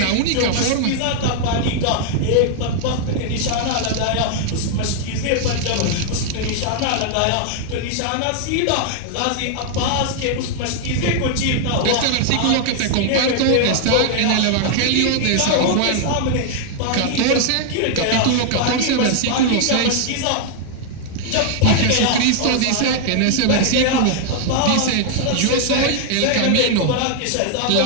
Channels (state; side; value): different; both; correlation 0.00